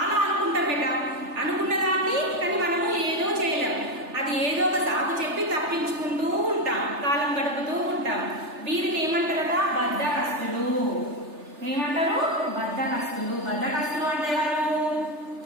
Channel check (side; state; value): left; late; 3.3 ms